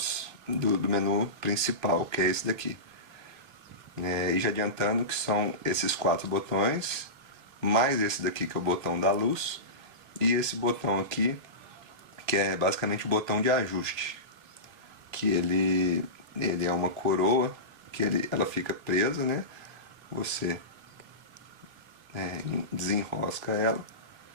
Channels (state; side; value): late; left; 2.3 ms